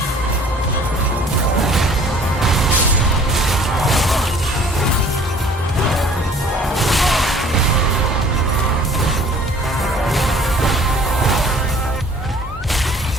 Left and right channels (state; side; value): normal; both; correlation 0.52